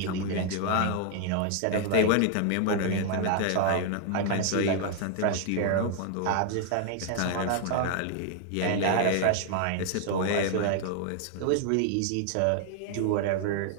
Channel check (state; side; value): different; both; correlation 0.00